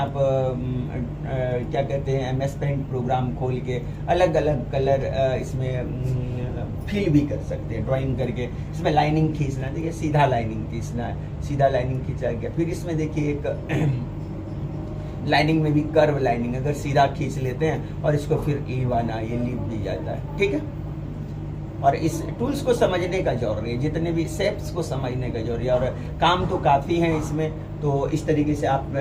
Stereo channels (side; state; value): both; identical; correlation 1.00